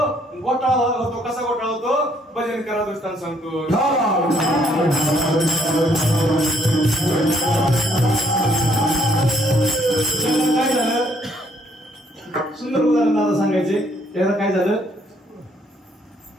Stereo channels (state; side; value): normal; both; correlation 0.67